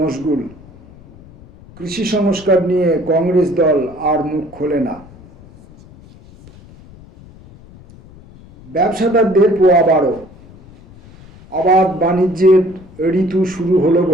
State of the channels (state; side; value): noise; left; rumble, 22 dB below the sound